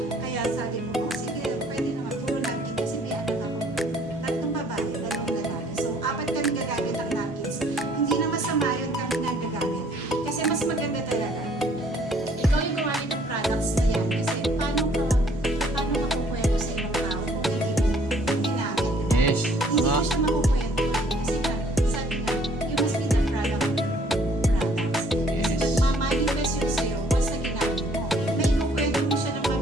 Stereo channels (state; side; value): normal; both; correlation 0.60